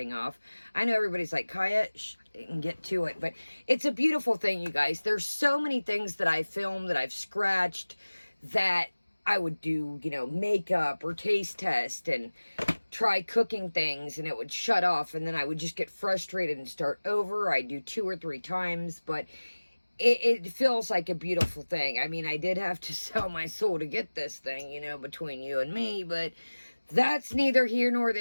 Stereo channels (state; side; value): inverted; both; correlation -1.00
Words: off. I know everybody's like, Kaya, and get to it, but it's a beautiful thing, you guys. There's so many things that I filmed, that I've scratched, that I would do, you know, makeup or taste test and try cooking things, and it would shut off, and then I would just get frustrated and start over. I'd do 2 or 3 times, but it feels like a beautiful thing. I mean, I did have to sell my soul to get this thing, you know, between you and me, but that's neither here nor